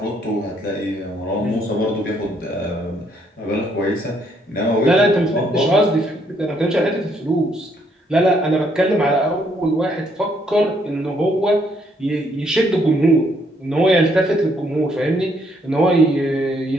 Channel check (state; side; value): normal; both; correlation 0.70